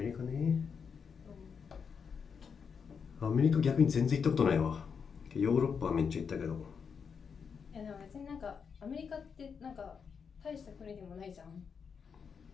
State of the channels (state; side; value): quieter; right; 6.3 dB